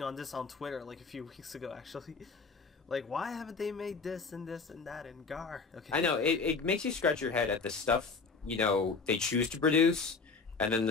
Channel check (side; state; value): right; quieter; 4.6 dB